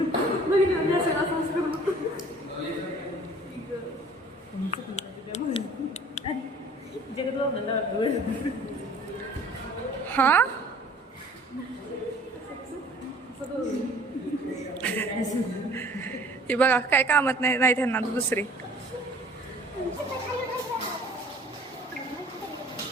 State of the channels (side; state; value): both; normal; correlation 0.51